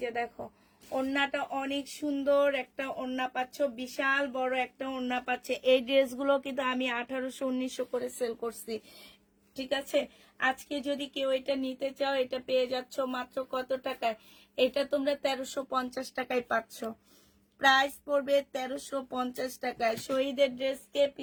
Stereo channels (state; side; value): identical; both; correlation 1.00